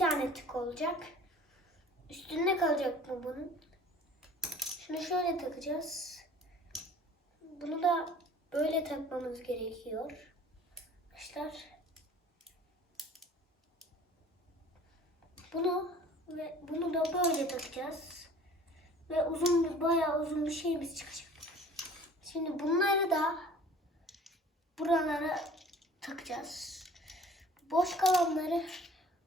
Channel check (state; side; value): normal; both; correlation 0.48